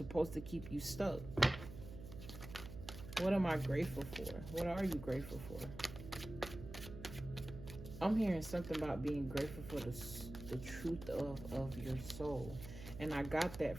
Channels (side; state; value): right; noise; hum, 12 dB below the sound